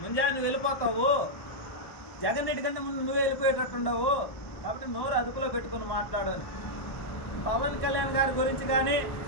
ముంజా నువ్వు వెళ్ళిపోతావు, జగన్ రెడ్డి కంటే ముందు నువ్వే వెళ్ళిపోయేటట్టుండవు. కాబట్టి నోరు అదుపులో పెట్టుకుని మాట్లాడాలి. పవన్ కళ్యాణ్ గారి గురించి కానీ,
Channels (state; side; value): late; right; 1.2 ms